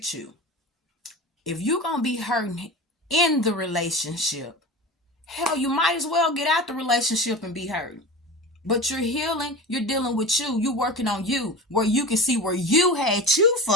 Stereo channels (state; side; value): normal; both; correlation 0.31